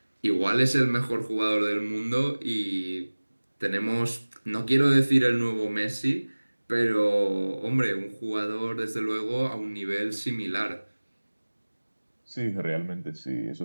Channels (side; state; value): both; inverted; correlation -1.00